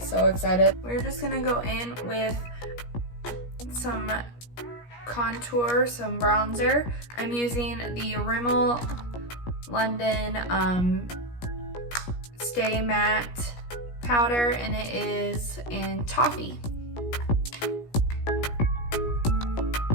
so excited. We're just gonna go in with some contour, some bronzer. I'm using the Rimmel London Stay Matte powder, and it is in Toffee.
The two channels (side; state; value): right; late; 17 ms